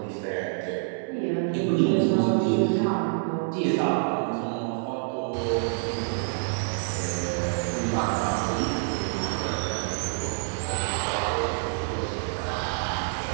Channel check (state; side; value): silent; left; 60 dB below the other